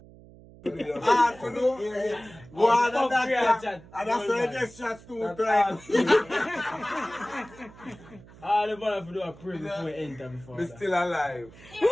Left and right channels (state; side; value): noise; right; hum, 21 dB below the sound